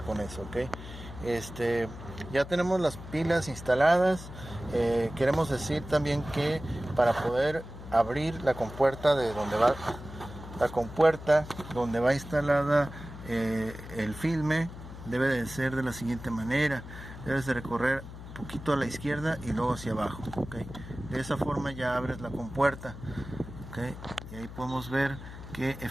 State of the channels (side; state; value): left; noise; hum, 13 dB below the sound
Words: con eso, ok. Ya tenemos las pilas instaladas. Queremos decir también que para poder abrir la compuerta de donde va instalada el filme, debe de ser de la siguiente manera. Debes de recorrer un poquito a la izquierda y luego hacia abajo, ¿okay? De esa forma ya abres la compuerta, ¿okay? Y ahí podemos ver que